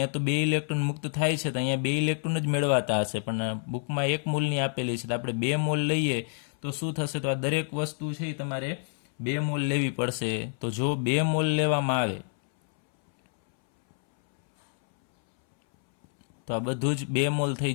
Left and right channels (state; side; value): silent; right; 59 dB below the other